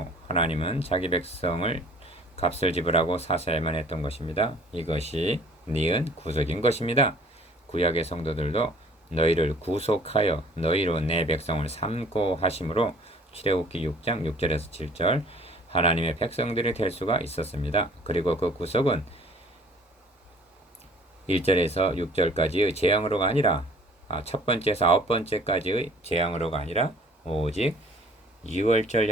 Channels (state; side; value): normal; both; correlation 0.52